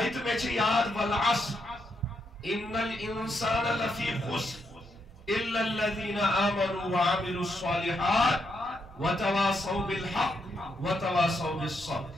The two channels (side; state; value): both; normal; correlation 0.79